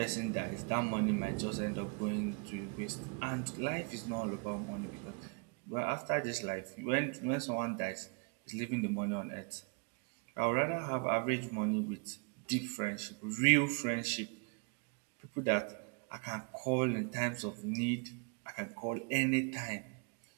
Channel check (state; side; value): quieter; left; 34.8 dB